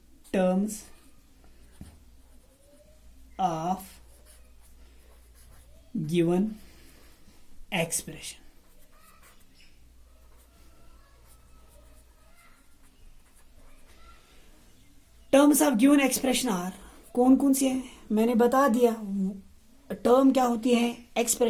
terms of given expression. Terms of given expression are, कौन कौन सी है मैंने बता दिया। टर्म क्या होती है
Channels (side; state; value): both; identical; correlation 1.00